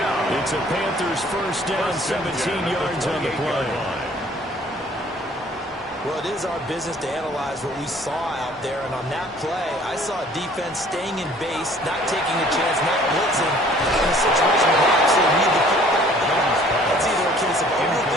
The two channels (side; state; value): both; normal; correlation 0.55